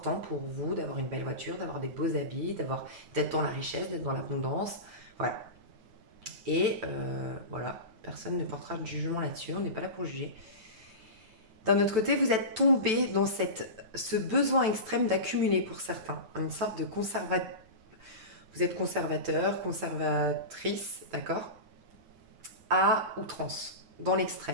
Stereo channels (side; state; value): left; late; 9.1 ms